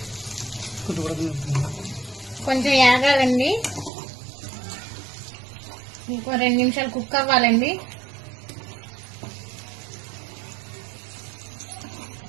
కొంచెం యాగాలండి. ఇంకో 2 నిమిషాలు కుక్ అవ్వాలండి.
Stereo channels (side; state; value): left; drops out; at 3.9 s